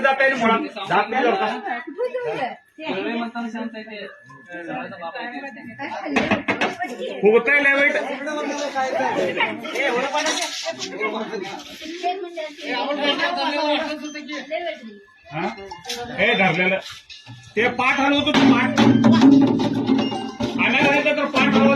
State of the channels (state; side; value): identical; both; correlation 1.00